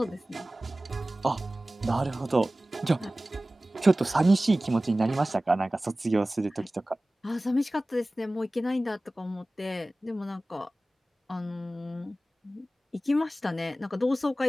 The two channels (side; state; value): both; normal; correlation 0.97